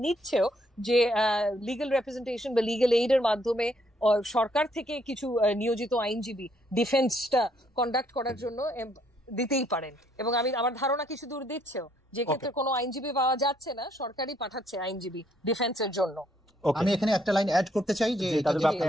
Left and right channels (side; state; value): both; normal; correlation 0.69